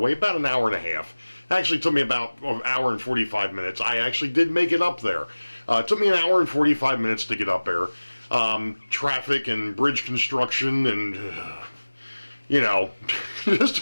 about an hour and a half. It actually took me about an hour and 45 minutes. I actually did make it up there. It took me an hour and 45 minutes to get up there. Traffic and bridge construction and, you know,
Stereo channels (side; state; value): both; inverted; correlation -1.00